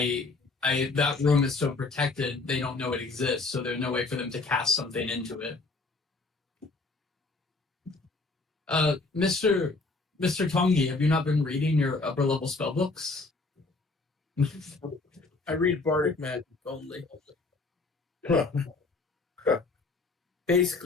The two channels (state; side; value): quieter; right; 3.7 dB